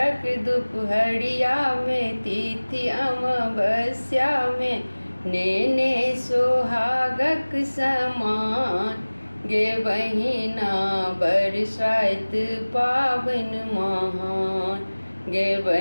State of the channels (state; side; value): inverted; both; correlation -1.00